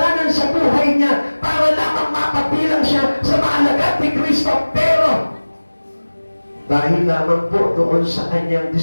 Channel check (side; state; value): both; inverted; correlation -1.00